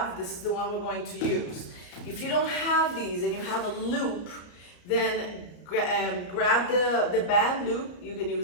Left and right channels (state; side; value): late; right; 34 ms